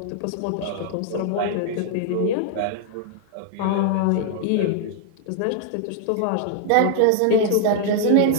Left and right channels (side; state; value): both; different; correlation -0.01